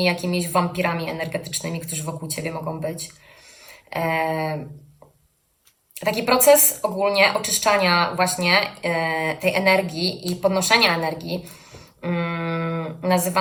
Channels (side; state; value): both; identical; correlation 1.00